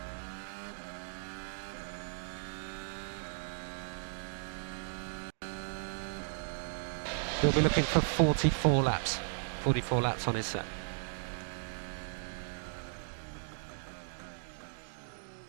He'll be looking for 44 laps. 44 laps on his set.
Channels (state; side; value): silent; left; digital silence